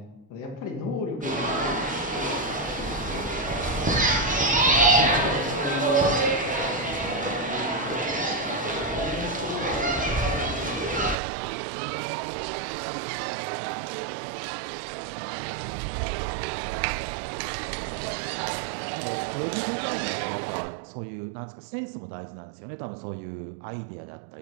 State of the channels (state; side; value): drops out; left; at 11.2 s